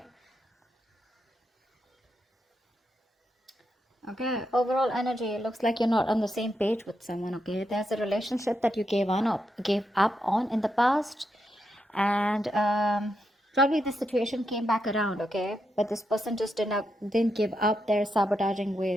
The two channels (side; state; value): both; normal; correlation 0.83